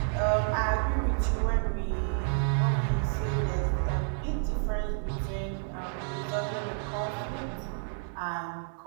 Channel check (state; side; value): silent; left; 58 dB below the other